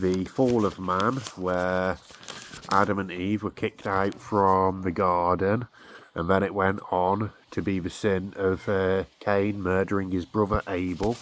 fall of man, where Adam and Eve were kicked out from the garden, and then it went on to be the sin of Cain murdering his brother Abel.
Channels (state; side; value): identical; both; correlation 1.00